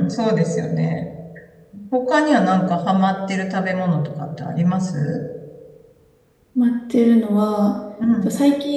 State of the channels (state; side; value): identical; both; correlation 1.00